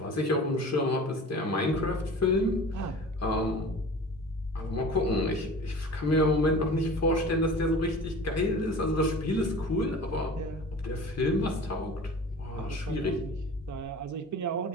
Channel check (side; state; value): both; normal; correlation 0.40